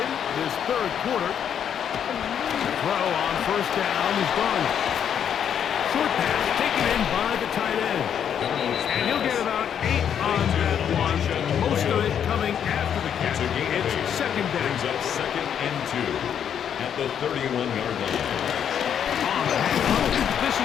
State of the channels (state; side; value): quieter; right; 8.6 dB